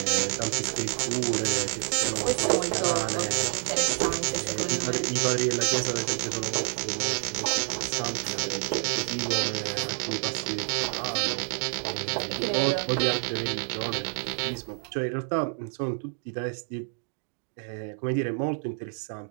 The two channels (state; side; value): silent; left; 59 dB below the other